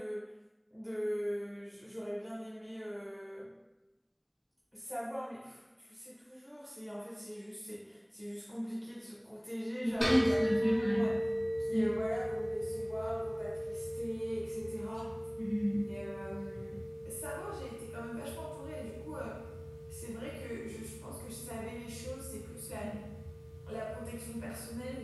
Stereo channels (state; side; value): identical; both; correlation 1.00